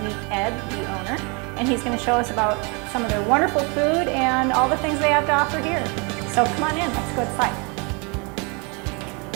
meet Ed, the owner, and he's going to show us about some of their wonderful food and all the things they have to offer here. So come on in, let's go inside.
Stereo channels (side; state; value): left; quieter; 32.0 dB